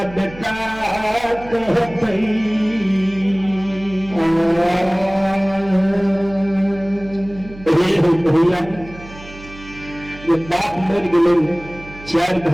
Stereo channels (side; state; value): right; noise; hum, 18 dB below the sound